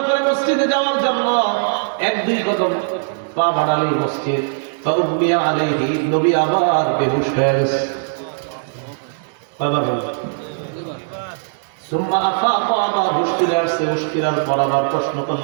করে মসজিদে যাওয়ার জন্য এক দুই কদম পা বাড়ালেই মসজিদ। ফাউমিয়া আলাইহি, নবী আবার বেহুশ হয়ে গেছে। সুম্মা আফাকা, আবার হুশ ফিরে আসছে। হুশ ফিরার পর আবার প্রশ্ন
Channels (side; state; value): left; silent; digital silence